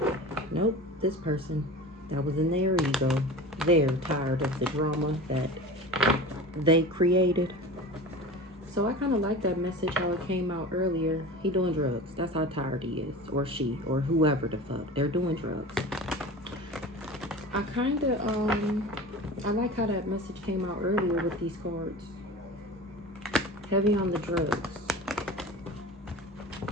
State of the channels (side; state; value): both; normal; correlation 0.34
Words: Nope, this person that was in their ego. They're tired of the drama that they created. So I kind of like that message, how it came out earlier. He doing drugs. That's how tired he is. Or she. Or whoever the fuck. They're doing drugs. I kind of, I like how that message came out earlier with these cards. Heavy on the drugs.